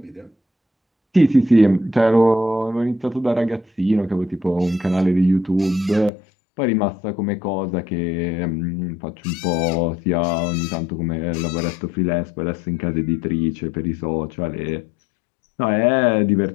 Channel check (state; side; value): drops out; right; at 6.1 s